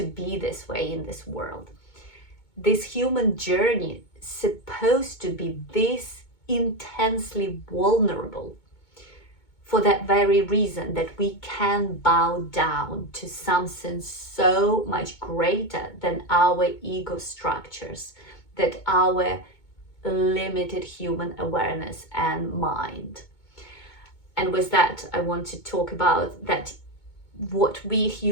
be this way in this world. This human journey is supposed to be this intensely vulnerable for that very reason, that we can bow down to something so much greater than our ego structures, that our limited human awareness and mind. And with that, I want to talk about that what we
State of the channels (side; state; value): right; late; 2.2 ms